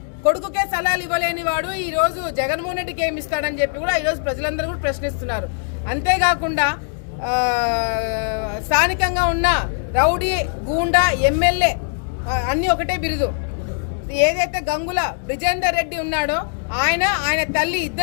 కొడుకుకే సలహాలు ఇవ్వలేని వాడు ఈ రోజు జగన్మోహన్ రెడ్డికి ఏమి ఇస్తాడని చెప్పి కూడా ఈరోజు ప్రజలందరూ కూడా ప్రశ్నిస్తున్నారు. అంతేకాకుండా స్థానికంగా ఉన్న రౌడీ, గూండా, ఎమ్మెల్యే అన్నీ ఒకటే బిరుదు. ఏదైతే గంగుల బ్రిజేందర్ రెడ్డి ఉన్నాడో ఆయన తల్లి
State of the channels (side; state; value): right; silent; digital silence